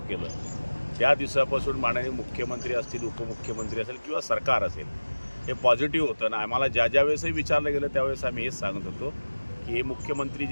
केलं त्या दिवसापासून माननीय मुख्यमंत्री असतील, उपमुख्यमंत्री असेल किंवा सरकार असेल, हे पॉझिटिव्ह होतं ना. आम्हाला ज्या वेळेसही विचारलं गेलं त्यावेळेस आम्ही हेच सांगत होतो की हे मुख्यमंत्री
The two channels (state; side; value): inverted; both; correlation -1.00